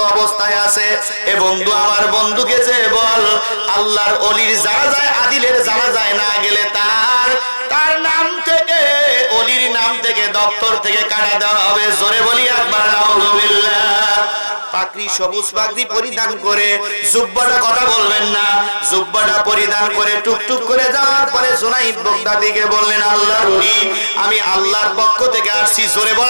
অবস্থায় আছে। এ বন্ধু, আমার বন্ধুকে যে বল আল্লাহর ওলির জানাজায় আদিলের জানাজায় না গেলে তার নাম থেকে, ওলির নাম থেকে, দপ্তর থেকে কাটা দেওয়া হবে। জোরে বলি একবার নাউজুবিল্লাহ। পাগড়ি, সবুজ পাগড়ি পরিধান করে, জুব্বাটা কথা বলবেন না, জুব্বাটা পরিধান করে টুকটুক করে যাওয়ার পরে জুনাইদ বাগদাদীকে বললেন, আল্লাহর ওলি, আমি আল্লাহর পক্ষ থেকে আসছি। জোরে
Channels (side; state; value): both; inverted; correlation -1.00